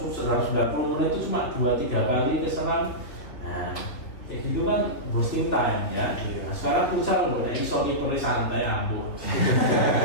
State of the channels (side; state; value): right; late; 3.3 ms